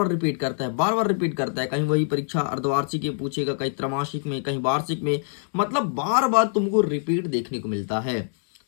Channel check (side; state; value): right; silent; digital silence